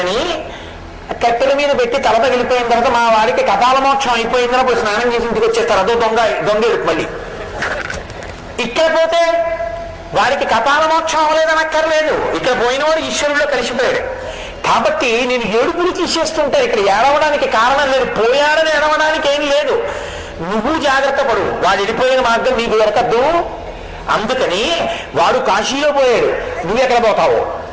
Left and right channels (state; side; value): identical; both; correlation 1.00